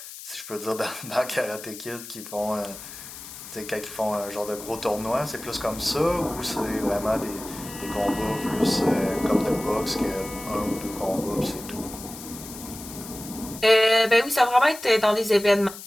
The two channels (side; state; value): left; noise; hiss, 13 dB below the sound